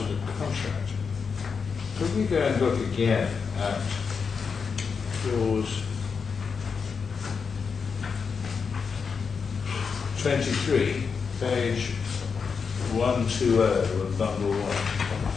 the contract. Could we go and look again at clause 23, page 120 of bundle 1?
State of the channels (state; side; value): quieter; right; 5.7 dB